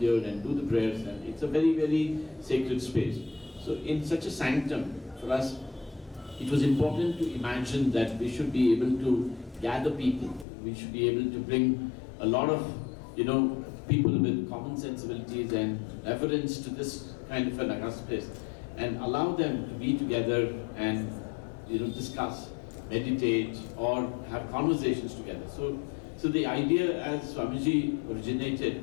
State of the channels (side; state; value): right; drops out; at 10.5 s